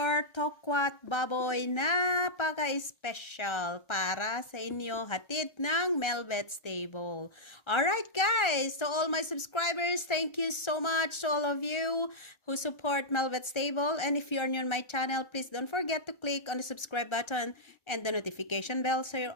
Tokwa'T Baboy, napaka-special para sa inyo, hatid ng Melvet's Table. Alright guys, to all my subscribers, thank you so much to all of you who support Melvet's Table. And if you're new on my channel, please don't forget to click on the subscribe button and the notification bell so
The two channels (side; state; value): right; late; 1.3 ms